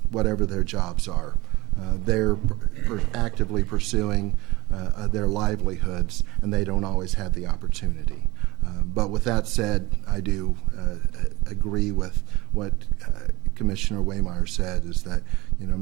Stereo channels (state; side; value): quieter; left; 21.5 dB